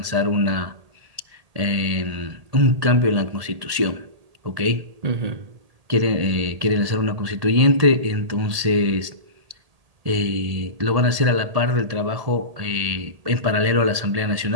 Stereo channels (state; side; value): late; left; 1.8 ms